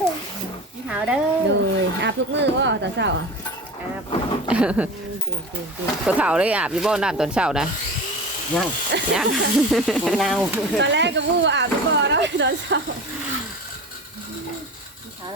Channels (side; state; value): both; normal; correlation 0.32